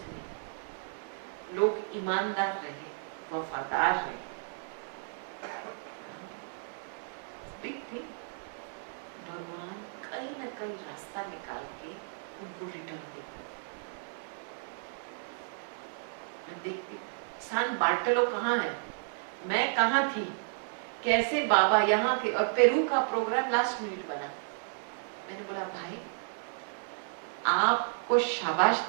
में लोग ईमानदार रहे, वफादार रहे, बिग थिंग। भगवान कहीं ना कहीं रास्ता निकाल के उनको रिटर्न देगा। मैं देखती सान बार्टलो कहाँ है, मैं कहाँ थी, कैसे बाबा यहाँ के, और पेरू का प्रोग्राम लास्ट मिनट बना। मैंने बोला भाई आपको शाबाश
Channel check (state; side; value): silent; left; digital silence